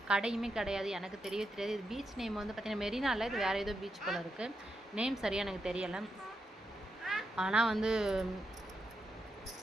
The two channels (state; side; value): normal; both; correlation 0.84